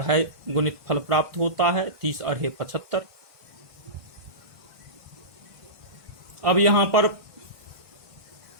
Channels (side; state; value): left; late; 1.5 ms